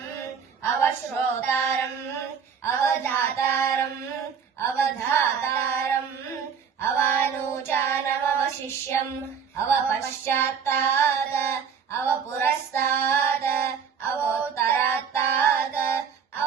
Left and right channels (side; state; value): left; quieter; 6.9 dB